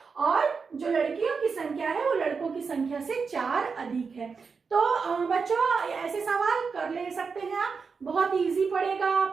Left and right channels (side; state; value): left; quieter; 5.2 dB